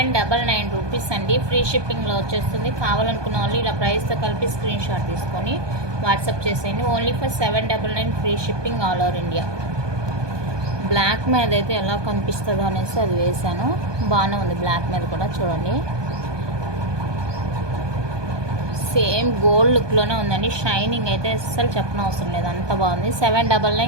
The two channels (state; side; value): late; left; 1.2 ms